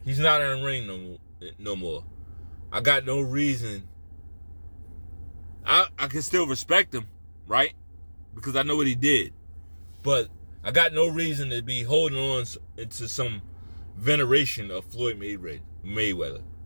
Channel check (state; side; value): inverted; both; correlation -1.00